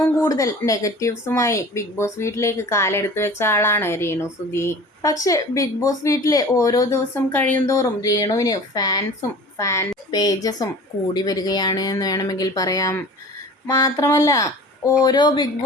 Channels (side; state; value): both; normal; correlation 0.41